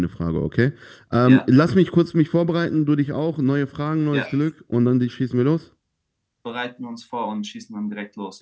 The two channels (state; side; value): identical; both; correlation 1.00